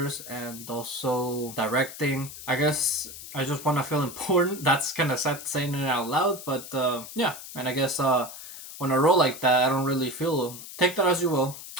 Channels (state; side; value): noise; left; hiss, 13 dB below the sound